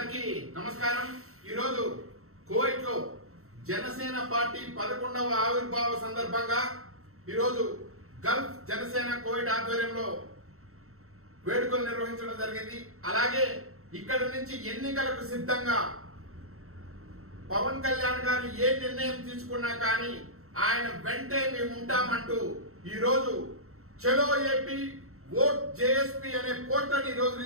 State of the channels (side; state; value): left; late; 0.63 ms